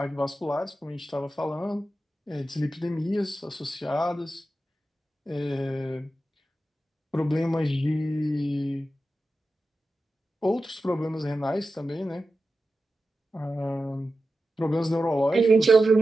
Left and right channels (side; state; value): both; normal; correlation 0.92